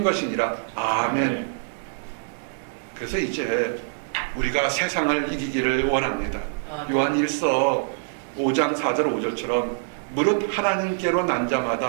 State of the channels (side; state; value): left; silent; digital silence